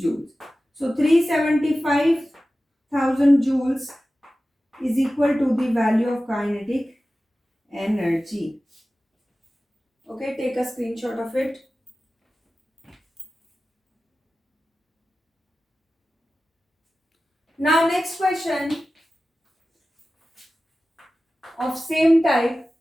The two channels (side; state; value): both; normal; correlation 0.95